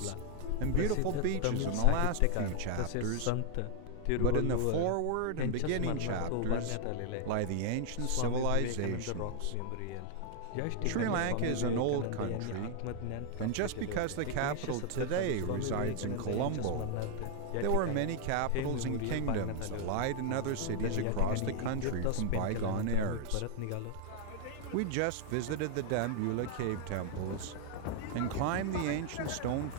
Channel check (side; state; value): both; different; correlation 0.00